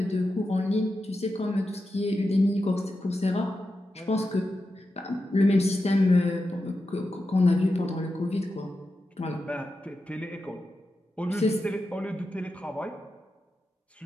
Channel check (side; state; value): both; normal; correlation 0.90